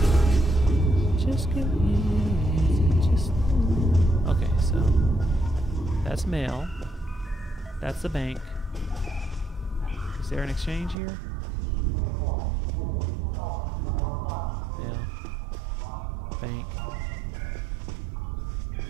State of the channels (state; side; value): drops out; left; at 11.0 s